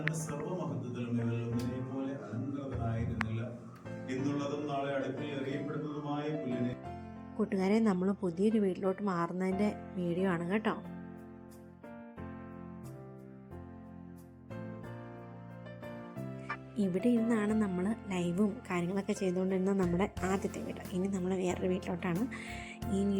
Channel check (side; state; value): both; identical; correlation 1.00